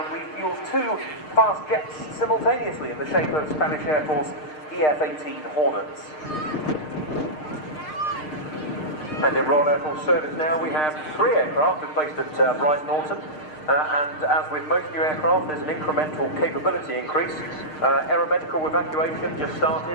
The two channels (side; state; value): right; late; 6.6 ms